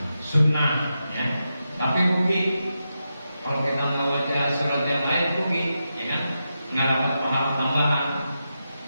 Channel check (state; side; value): inverted; both; correlation -0.88